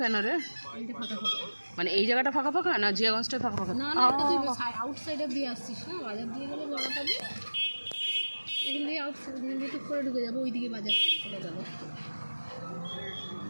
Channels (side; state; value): both; inverted; correlation -1.00